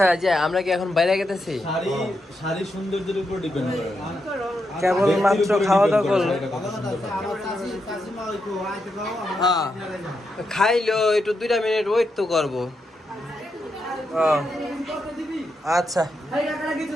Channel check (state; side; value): normal; both; correlation 0.84